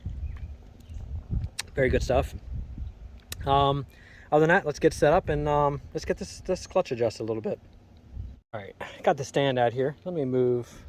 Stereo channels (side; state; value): both; identical; correlation 1.00